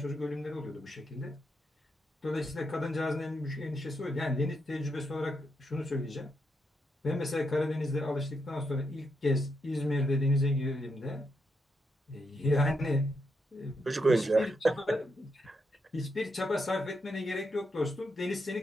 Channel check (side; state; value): both; normal; correlation 0.82